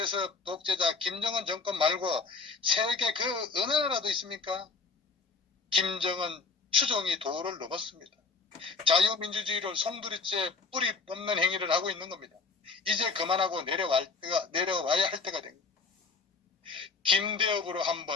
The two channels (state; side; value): quieter; right; 4.4 dB